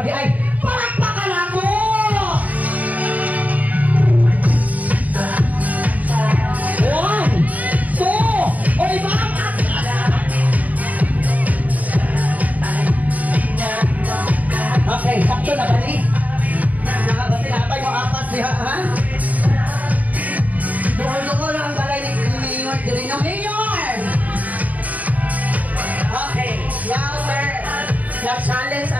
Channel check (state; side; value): late; left; 0.074 ms